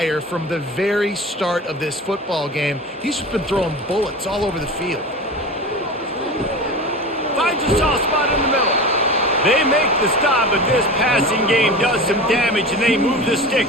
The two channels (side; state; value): both; normal; correlation 0.31